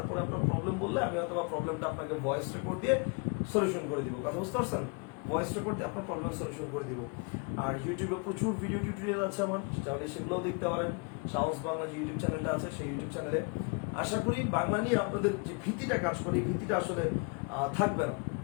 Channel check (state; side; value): quieter; right; 33.6 dB